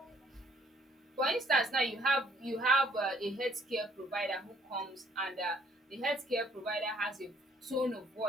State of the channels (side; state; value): both; normal; correlation 0.63